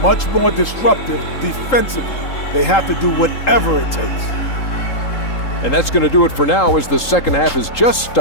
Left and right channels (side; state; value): right; late; 3.8 ms